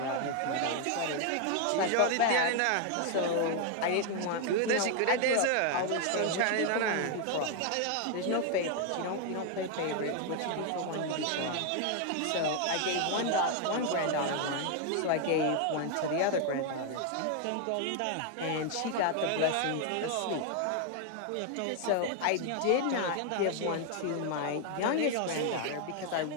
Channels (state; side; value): different; both; correlation 0.01